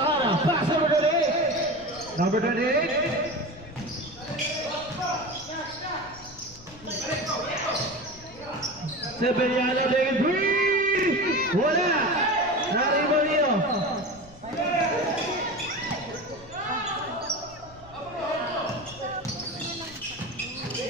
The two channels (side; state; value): left; noise; rumble, 21 dB below the sound